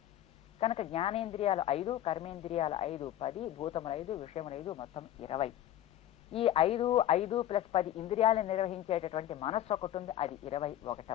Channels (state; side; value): quieter; right; 12.4 dB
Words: కనుక జ్ఞానేంద్రియాలు 5, కర్మేంద్రియాలు 5, 10, భూతములు 5, విషయములు 5, మొత్తం 20. ఈ 5 + 10 ఇంద్రియాలను నిర్వహించేటటువంటి మనస్సు ఒకటి ఉంది, అది